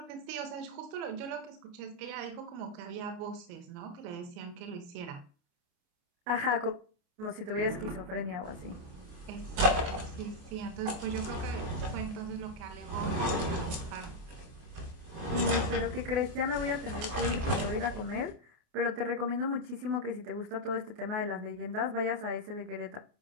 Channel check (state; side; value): late; left; 29 ms